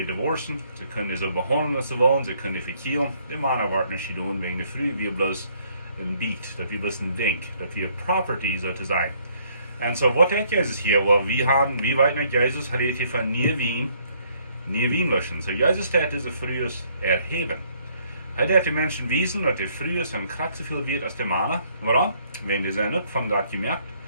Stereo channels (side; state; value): both; inverted; correlation -0.66